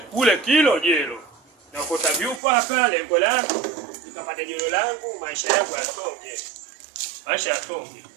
Kule kilo jelo. Nakota vyupa hapa, lengo langu nikapata jelo langu, maisha yangu yasonge. Maisha yasonge.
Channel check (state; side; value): drops out; left; at 2.4 s